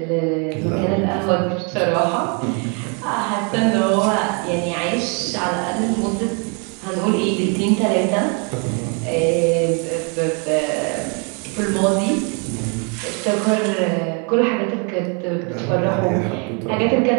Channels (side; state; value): left; quieter; 36.2 dB